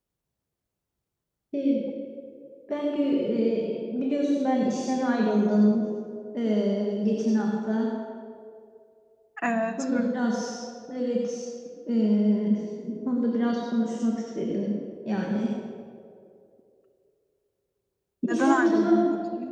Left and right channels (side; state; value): both; identical; correlation 1.00